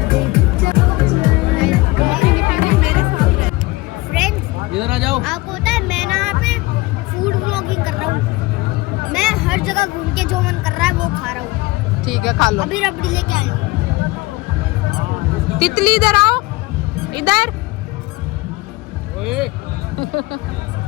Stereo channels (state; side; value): quieter; right; 21.3 dB